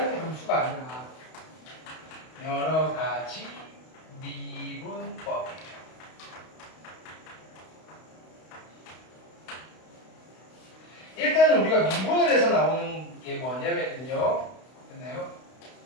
함수가 아니라 여러 가지 미분법이에요. 일단은 우리가 미분을 해서 나오는 게 뭐냐면요. 됐나요?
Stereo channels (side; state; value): right; late; 32 ms